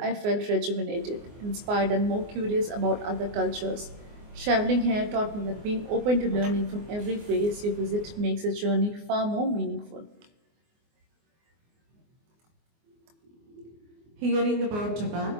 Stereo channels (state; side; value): late; left; 24 ms